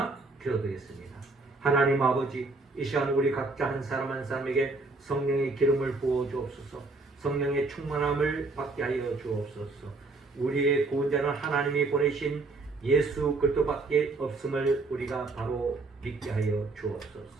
기도드리겠습니다. 하나님 아버지, 이 시간 우리 각자 한 사람 한 사람에게 성령의 기름을 부어 주옵소서. 성령의 충만함을 받게 하여 주옵소서. 우리의 구원자는 하나님이 보내신 예수 그리스도밖에 없음을 우리가 바로 믿게 하여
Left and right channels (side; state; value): left; quieter; 3.5 dB